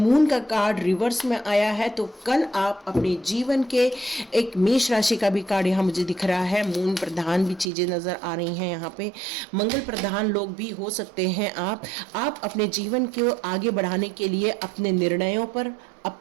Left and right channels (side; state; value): left; drops out; at 7.7 s